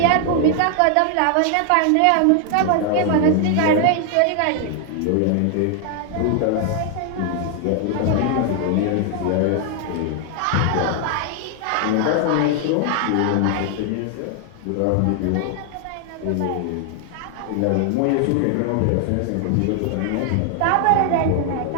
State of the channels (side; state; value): both; different; correlation 0.00